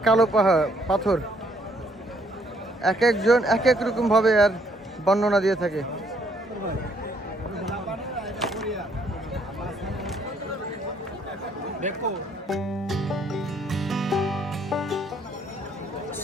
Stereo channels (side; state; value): both; normal; correlation 0.67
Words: কালো পাথর, এক একজন এক এক রকম ভাবে আর বর্ণনা দিয়ে থাকে।